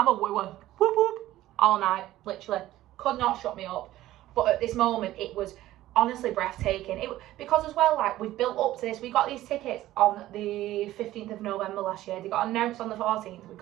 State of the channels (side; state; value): left; quieter; 15.0 dB